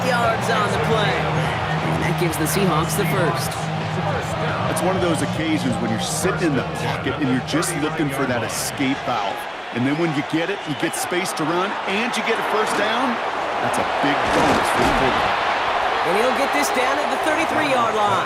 yards on the play. And that gives the Seahawks the first. It's one of those occasions when you're sitting in the pocket and you're just looking for that escape valve. And then when you get it, you get space to run, and you get a first down. That's a big bonus for the quarterback. And he'll get this down at the 33-yard line.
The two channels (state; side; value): identical; both; correlation 1.00